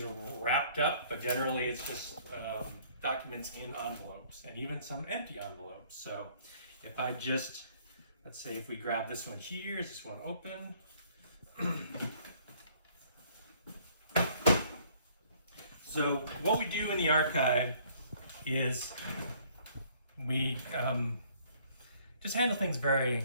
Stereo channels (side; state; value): both; inverted; correlation -0.60